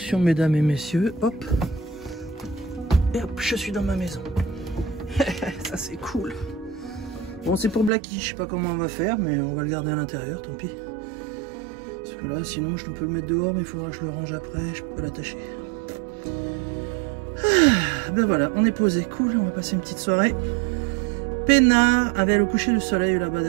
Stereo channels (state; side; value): drops out; left; at 7.9 s